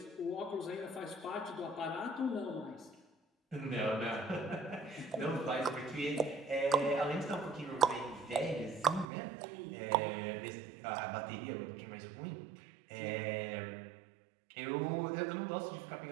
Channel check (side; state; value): left; drops out; at 9.1 s